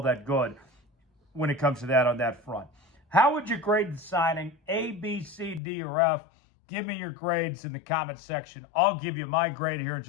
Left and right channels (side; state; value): right; drops out; at 5.6 s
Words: that good when it comes to that on that front. How would you grade the signing? A, B, C, D, or F? Give me your grades in the comment section. I'll give you my grade here in